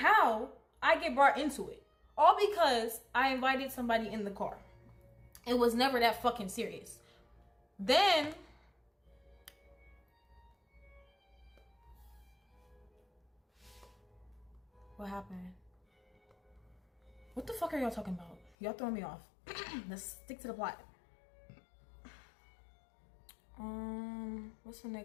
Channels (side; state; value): right; drops out; at 18.5 s